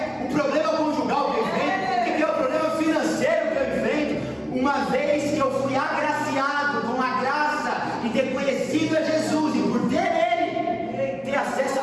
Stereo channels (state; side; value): identical; both; correlation 1.00